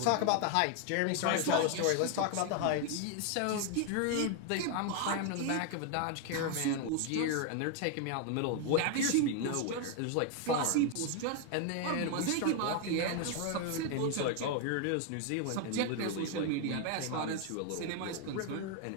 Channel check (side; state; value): both; different; correlation 0.01